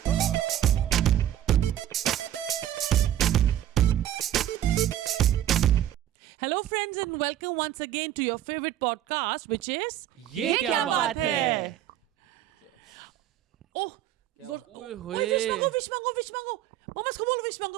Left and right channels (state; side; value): quieter; left; 12.0 dB